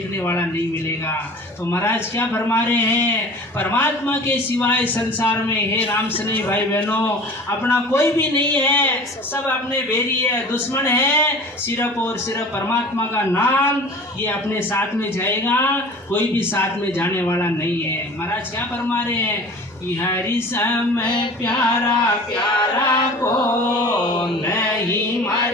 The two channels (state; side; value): normal; both; correlation 0.41